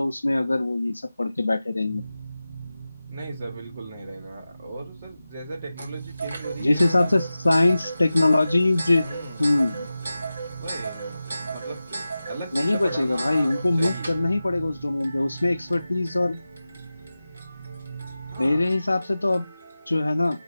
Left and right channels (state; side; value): inverted; both; correlation -0.95